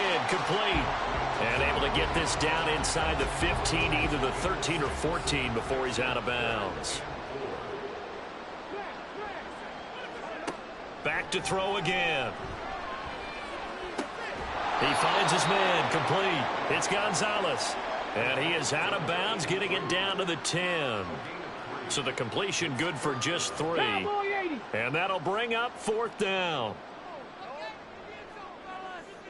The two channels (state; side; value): identical; both; correlation 1.00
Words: complete. And able to get this down inside the 15, either the 13 or 14 before he's out of bounds. Back to throw again. He finds his man, complete. It's Gonzalez. And he is out of bounds, getting it down to the 10. So the completion good for just 3. And that'll bring up 4th down.